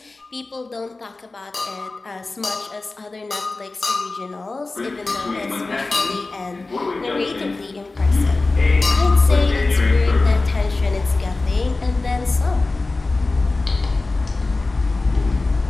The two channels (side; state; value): right; quieter; 3.4 dB